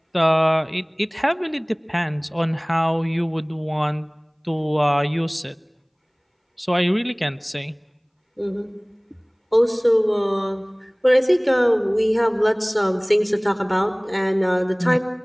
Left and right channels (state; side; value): identical; both; correlation 1.00